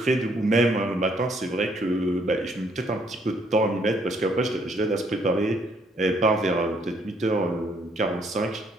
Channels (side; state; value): both; normal; correlation 0.68